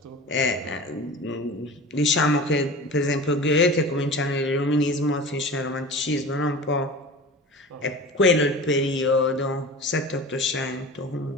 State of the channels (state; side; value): normal; both; correlation 0.35